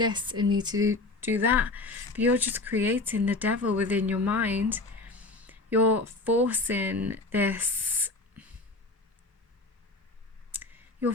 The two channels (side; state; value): right; quieter; 3.2 dB